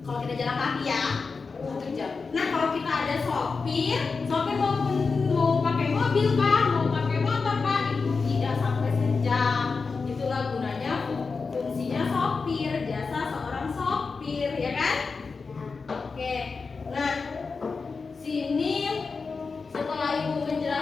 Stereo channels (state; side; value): quieter; right; 4.6 dB